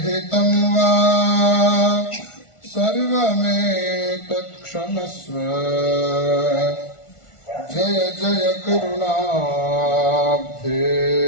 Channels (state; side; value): late; right; 1.4 ms